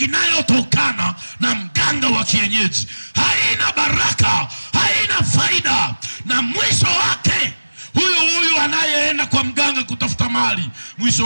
na mganga wa kienyeji. Haina baraka, haina faida, na mwisho wake huyu anayeenda kwa mganga kutafuta mali,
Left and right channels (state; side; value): inverted; both; correlation -1.00